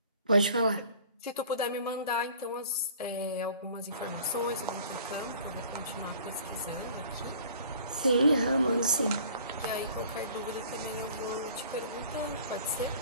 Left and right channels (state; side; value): inverted; both; correlation -0.50